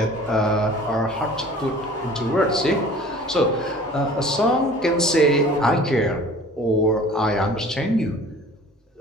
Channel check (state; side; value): normal; both; correlation 0.46